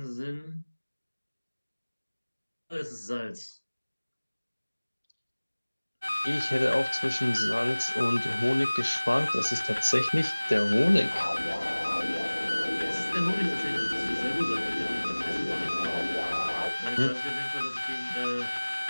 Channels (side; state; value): both; inverted; correlation -1.00